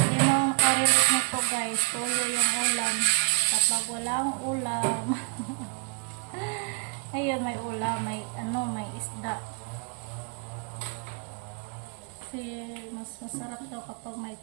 naman nakarelate nito guys. Tuyo yung ulam. Kapag walang ulam. Ayun, may ulam. May isda. Kasi mas masarap daw kapag may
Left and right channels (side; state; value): left; quieter; 37.8 dB